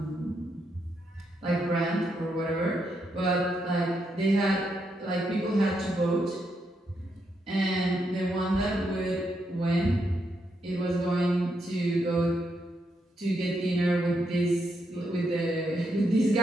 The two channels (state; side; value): normal; both; correlation 0.80